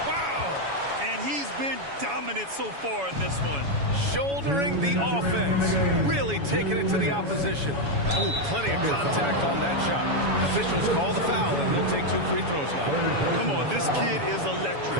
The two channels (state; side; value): late; left; 7.1 ms